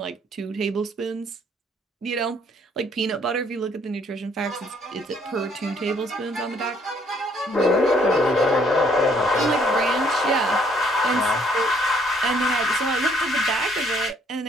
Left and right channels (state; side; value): normal; both; correlation 0.65